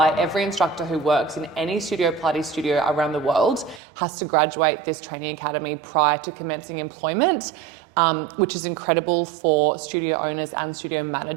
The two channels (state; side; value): drops out; left; at 3.8 s